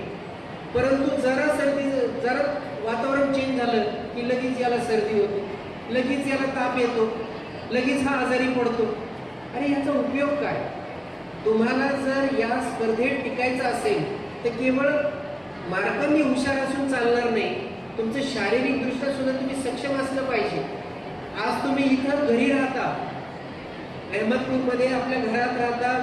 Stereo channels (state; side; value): identical; both; correlation 1.00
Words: परंतु जरा वातावरण चेंज झालं की लगेच याला सर्दी होते, लगेच याला ताप येतो, लगेच हा आजारी पडतो. अरे याचा उपयोग काय? तुम्हाला जर या स्पर्धेत टिकायचं असेल तर केवळ मार्कांनी हुशार असून चालणार नाही, तुमचं शारीरिकदृष्ट्या सुद्धा तुम्ही सक्षम असलं पाहिजे. आज तुम्ही इथं घरी राहता, अहमदपूरमध्ये आपल्या घरात राहता,